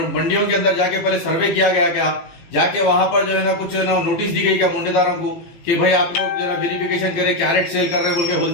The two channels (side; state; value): right; late; 18 ms